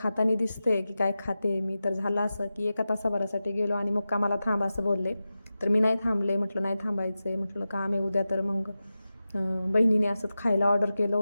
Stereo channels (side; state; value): both; inverted; correlation -0.93